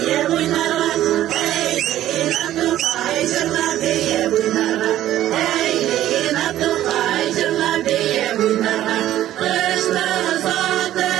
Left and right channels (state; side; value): quieter; left; 13.1 dB